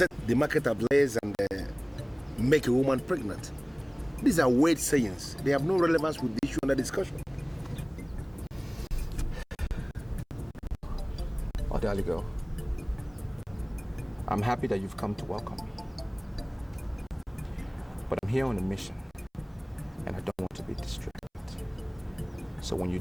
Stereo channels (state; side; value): identical; both; correlation 1.00